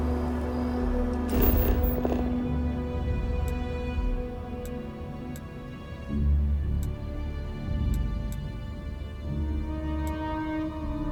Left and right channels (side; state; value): both; identical; correlation 1.00